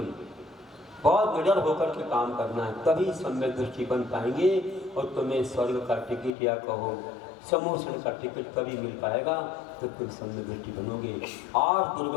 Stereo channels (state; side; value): drops out; right; at 6.3 s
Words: बहुत निडर होकर के काम करना है, तभी सम्यक दृष्टि बन पाएंगे। और तुम्हें स्वर्ग का टिकट या कहो समोषण का टिकट तभी मिल पाएगा जब तुम सम्यक दृष्टि बनोगे। 8